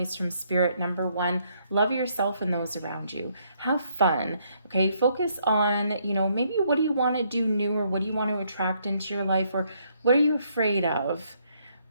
from Spirit, number 1, love yourself and those around you. Have fun, okay? Focus on, maybe what do you want to do new, or what do you want to attract into your life, or what are you afraid of?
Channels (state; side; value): inverted; both; correlation -0.71